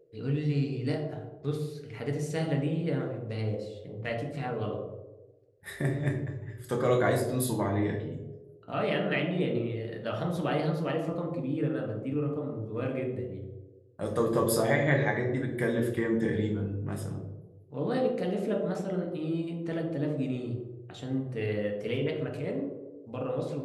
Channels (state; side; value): identical; both; correlation 1.00